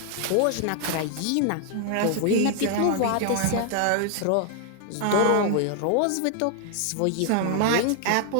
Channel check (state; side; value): different; both; correlation 0.00